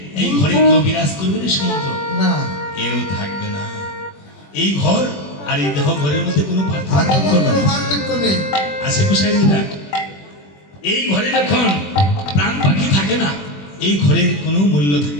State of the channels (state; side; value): late; right; 21 ms